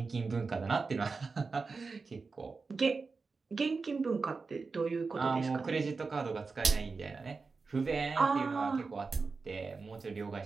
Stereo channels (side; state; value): left; quieter; 4.4 dB